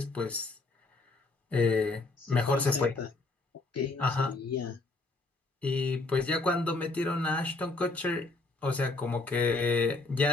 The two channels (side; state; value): right; quieter; 3.3 dB